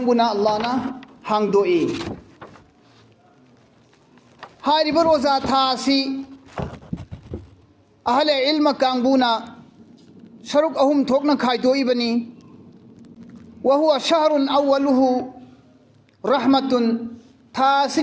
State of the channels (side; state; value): both; identical; correlation 1.00